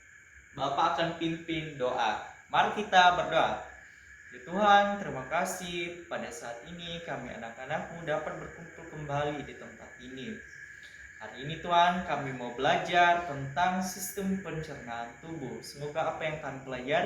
Bapak akan pimpin doa. Mari kita berdoa. Ya Tuhan, terima kasih pada saat ini kami anak-anakmu dapat berkumpul kembali di tempat ini. Hari ini Tuhan, kami mau belajar tentang sistem pencernaan tubuh. Semoga apa yang kami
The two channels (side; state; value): both; identical; correlation 1.00